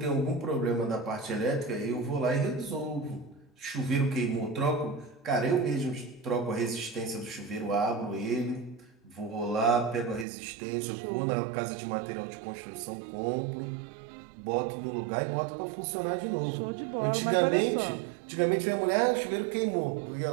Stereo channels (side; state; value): left; drops out; at 10.2 s